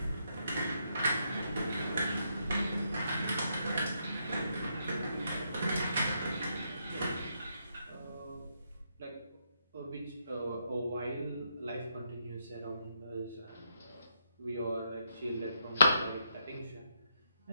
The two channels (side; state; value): both; inverted; correlation -0.78